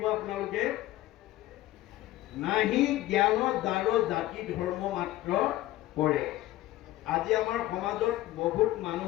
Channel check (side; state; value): right; quieter; 15.8 dB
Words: আপোনালোকে। নাহি জ্ঞান যাৰ জাতি ধৰ্ম মাত্ৰ কৰে। আজি আমাৰ সমাজত বহুত